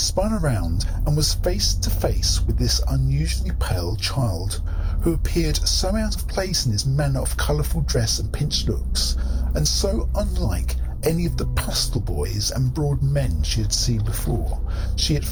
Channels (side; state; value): both; identical; correlation 1.00